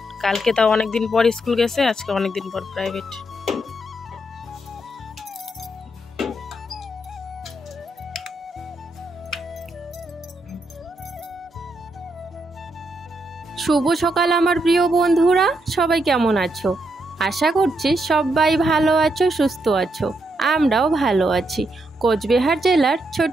কালকে তাও অনেকদিন পর স্কুল গেছে, আজকে অনেকদিন পর প্রাইভেট। শুভ সকাল আমার প্রিয় বন্ধুরা, সবাই কেমন আছো? আশা করছি সবাই ভালো আছো, সুস্থ আছো। আমরাও ভালো আছি। কোচবিহার জেলার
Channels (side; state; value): both; normal; correlation 0.79